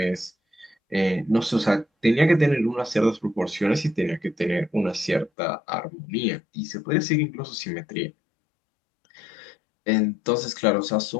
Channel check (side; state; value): right; drops out; at 5.3 s